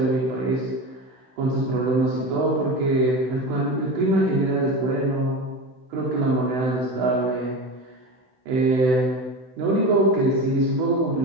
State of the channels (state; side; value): late; left; 16 ms